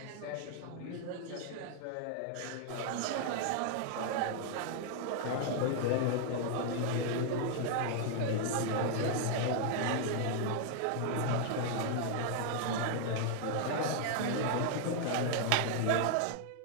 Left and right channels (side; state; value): both; different; correlation 0.00